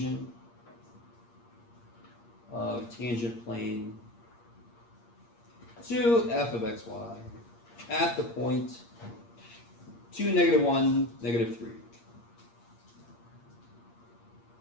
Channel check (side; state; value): right; late; 8.6 ms